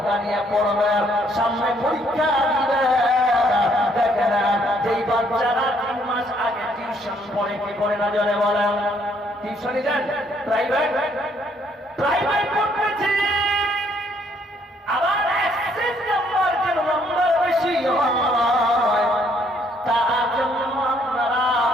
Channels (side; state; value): both; normal; correlation 0.67